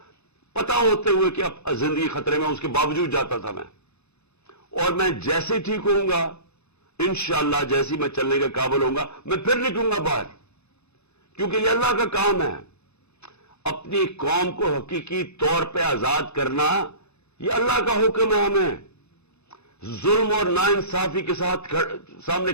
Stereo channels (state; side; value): late; right; 0.80 ms